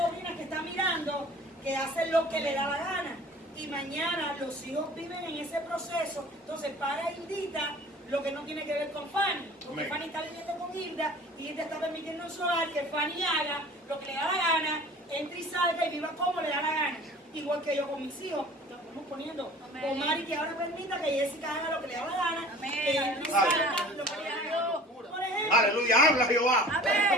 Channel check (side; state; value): both; normal; correlation 0.45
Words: que están mirando que hacen lo que le da la gana. Y mañana los hijos viven en ese proceso. Entonces, para Hildita, lo que no tiene que ver con Fanny. Porque Fanny está viviendo con Hilda y Hilda está permitiendo en su hogar que Fanny haga lo que le da la gana, entre y salga y viva como le da la gana. Igual que yo con mis hijos, lo estamos poniendo. Con Mari, que ahora permita que Jessica haga lo que le da la gana, que entre y salga lo que le da la gana. Por ejemplo, Aleluya, habla Jehová.